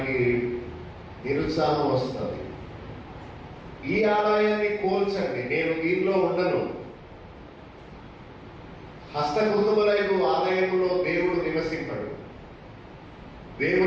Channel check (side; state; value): both; identical; correlation 1.00